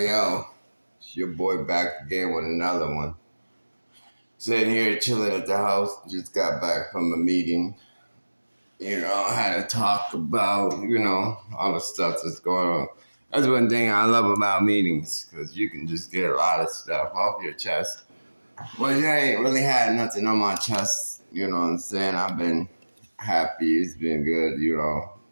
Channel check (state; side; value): inverted; both; correlation -1.00